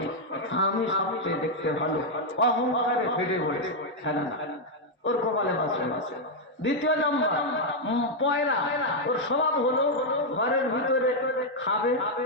আমি সবচেয়ে দেখতে ভালো, অহংকারে ফেটে পড়েছে। হ্যাঁ না, ওর কপালে বাঁচবে না। দ্বিতীয় নম্বর পয়রা, ওর স্বভাব হলো ঘরের ভিতরে খাবে,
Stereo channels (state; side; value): normal; both; correlation -0.01